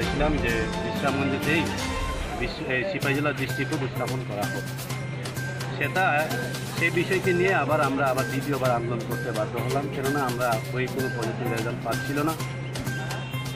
যে বিশ্রামগঞ্জেতেই সিপাহীজলা ডিস্ট্রিক্ট উপস্থাপন করা হোক। সেই বিষয়কে নিয়ে আমরা দ্বিতীয়বার আন্দোলন করতে বাধ্য হলাম, কেননা আমরা ওই কোনো পজিটিভ রেজাল্ট পাচ্ছিল না।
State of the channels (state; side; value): identical; both; correlation 1.00